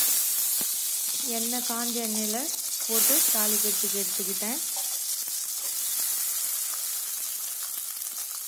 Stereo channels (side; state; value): both; identical; correlation 1.00